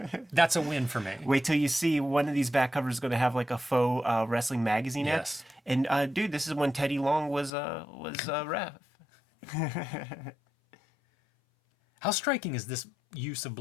that's a win for me. Wait till you see one of these back covers is going to have like a faux wrestling magazine ad. Yes. And dude, this is when Teddy Long was ref. How striking is this use of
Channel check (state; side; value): drops out; right; at 7.5 s